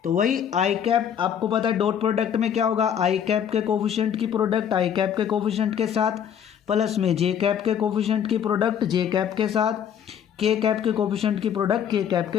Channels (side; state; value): right; quieter; 8.7 dB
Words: तो वही आई कैप, आपको पता है डॉट प्रोडक्ट में क्या होगा, आई कैप के कोफिशिएंट की प्रोडक्ट आई कैप के कोफिशिएंट के साथ प्लस में जे कैप के कोफिशिएंट की प्रोडक्ट जे कैप के साथ, के कैप के कोफिशिएंट की प्रोडक्ट के कैप